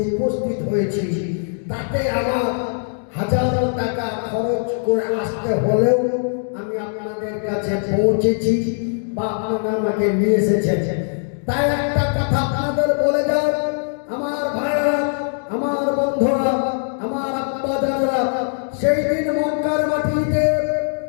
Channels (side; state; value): right; silent; digital silence